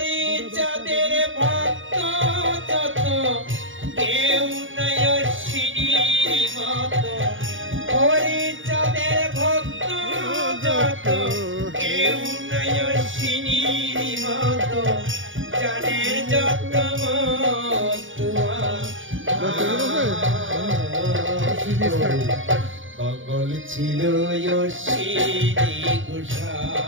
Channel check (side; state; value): left; late; 0.57 ms